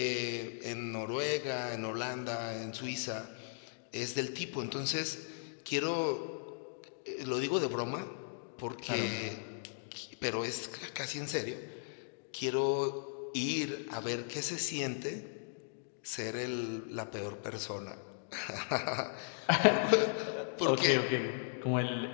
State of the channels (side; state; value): right; silent; digital silence